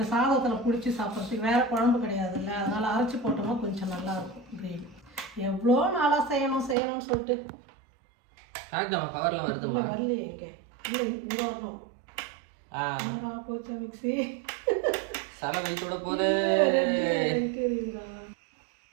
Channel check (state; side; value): drops out; left; at 6.8 s